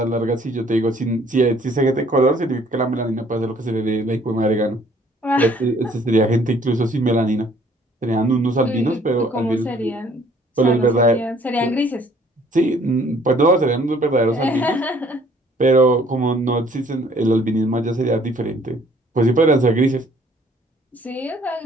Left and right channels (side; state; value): both; normal; correlation 0.59